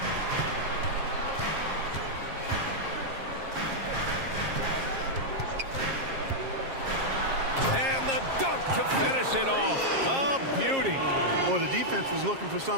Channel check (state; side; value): late; left; 7.5 ms